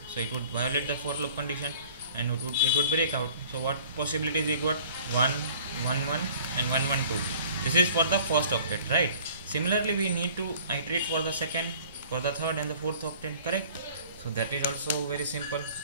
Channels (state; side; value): inverted; both; correlation -0.51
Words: so it would violate the for loop condition, and it would break out. So what possibilities we got? 1 1 1 and 1 1 2. This is for the first octet, right? Similarly, we need to iterate for the second, for the third and the fourth octet, correct? So that is also very simple.